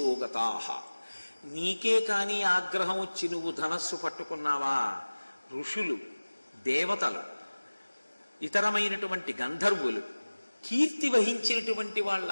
నీకే కాని ఆగ్రహం వచ్చి నువ్వు ధనస్సు పట్టుకున్నావా, ఋషులు, దేవతలు, ఇతరమైనటువంటి గంధర్వులు, కీర్తి వహించినటువంటి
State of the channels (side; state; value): both; inverted; correlation -1.00